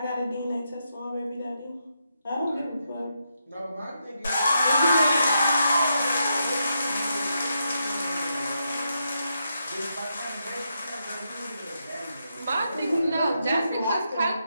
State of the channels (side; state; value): both; inverted; correlation -0.82